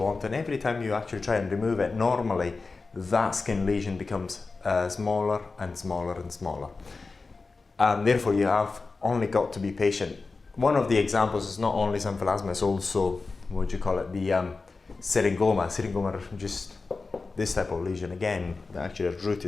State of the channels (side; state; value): right; quieter; 4.0 dB